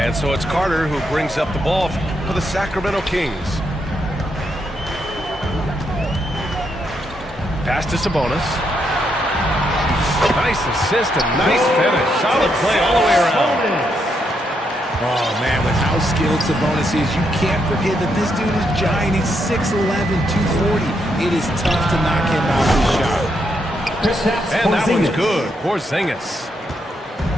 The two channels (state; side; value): normal; both; correlation 0.79